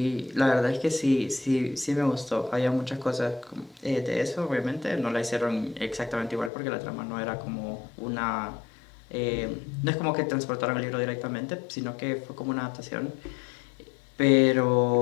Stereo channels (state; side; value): drops out; right; at 6.5 s